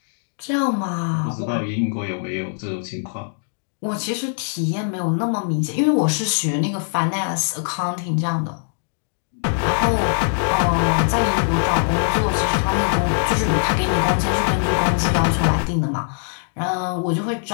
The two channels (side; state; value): right; silent; digital silence